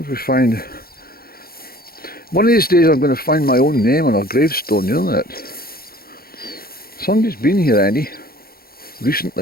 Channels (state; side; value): late; right; 0.44 ms